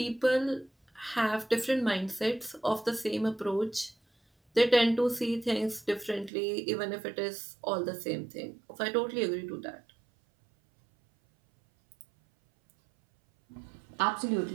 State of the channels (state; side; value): drops out; left; at 6.3 s